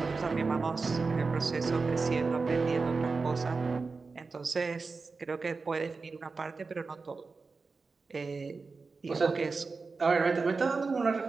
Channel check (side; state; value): left; quieter; 4.3 dB